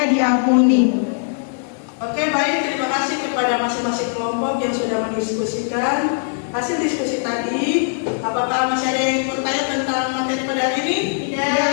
diampuni. Oke, baik, terima kasih kepada masing-masing kelompok yang sudah mendiskusikan hasil diskusi tadi. Apakah masih ada yang bertanya tentang materi pada hari ini?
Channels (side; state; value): right; silent; digital silence